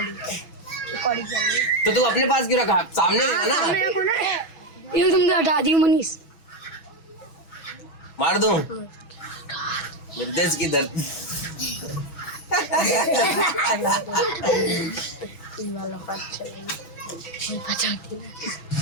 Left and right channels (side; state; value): right; late; 6.2 ms